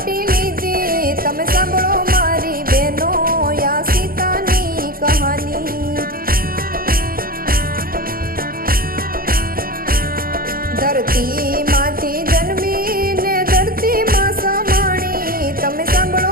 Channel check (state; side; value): late; left; 0.42 ms